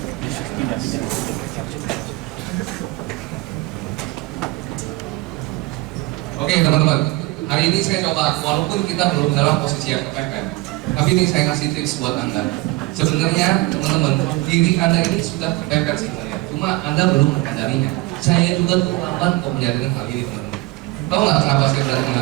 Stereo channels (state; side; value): quieter; left; 20.8 dB